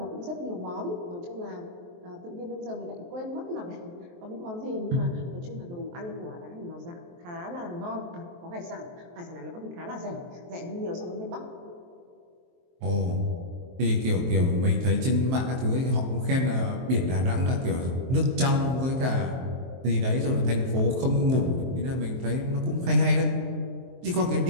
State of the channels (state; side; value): late; left; 23 ms